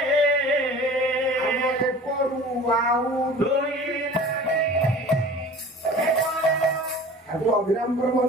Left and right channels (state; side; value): normal; both; correlation 0.42